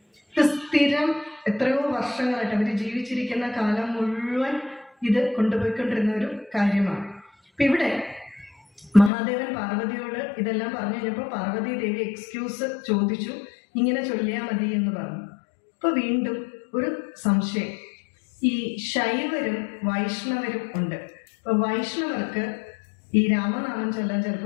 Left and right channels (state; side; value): drops out; right; at 9.1 s